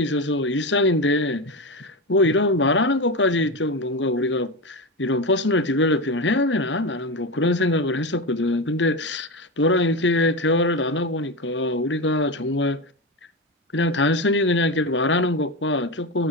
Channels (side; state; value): both; normal; correlation 0.17